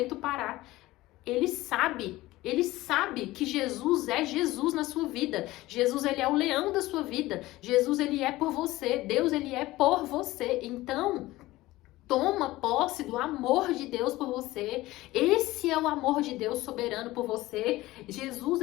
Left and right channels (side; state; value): right; quieter; 18.0 dB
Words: parar, ele sabe que Jesus é Jesus na sua vida. Jesus, ele é o leão da sua vida. Jesus, ele é por você. Deus, ele é por você. Então, toma posse do amor de Deus por você. Esse é o amor de Deus soberano por você. Jesus,